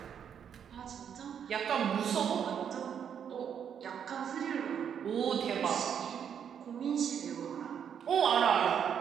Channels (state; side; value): quieter; left; 8.2 dB